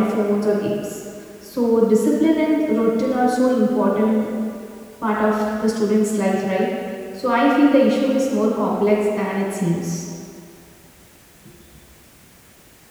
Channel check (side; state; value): both; identical; correlation 1.00